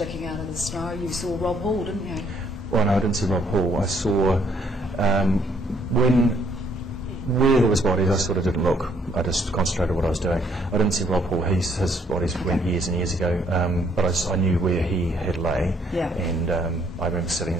out of the snow. You saw Rob Hall, didn't you? Well, no, I didn't see Rob Hall. I saw, where there was bodies, I sort of didn't look. I just concentrated on what I was doing. I didn't see Rob Hall. His bodies went years and years ago, but I knew where he had lay. Yeah. And I remember sitting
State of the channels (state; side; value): normal; both; correlation 0.67